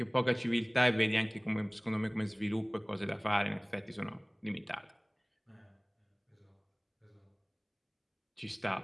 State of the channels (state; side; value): identical; both; correlation 1.00